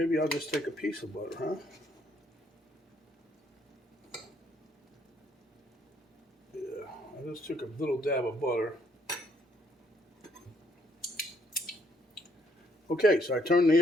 I'll just take a piece of butter, huh? Yeah, I just took a little dab of butter. Okay, so I turned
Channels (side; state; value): both; normal; correlation 0.69